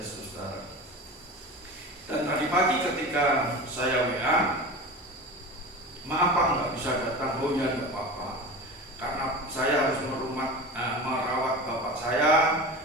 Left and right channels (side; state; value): both; normal; correlation 0.31